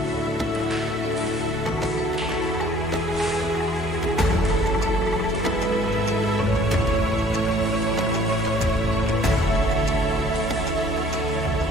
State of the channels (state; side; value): normal; both; correlation 0.56